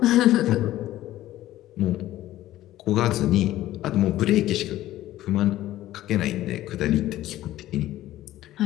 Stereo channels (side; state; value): right; quieter; 14.7 dB